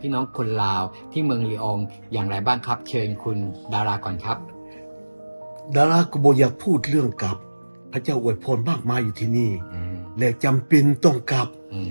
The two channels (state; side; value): inverted; both; correlation -1.00